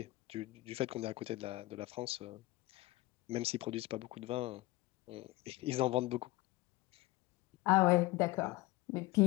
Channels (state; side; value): quieter; right; 20.1 dB